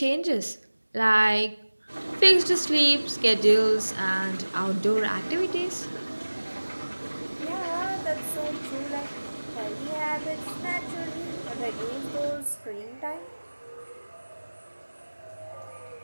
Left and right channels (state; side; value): inverted; both; correlation -1.00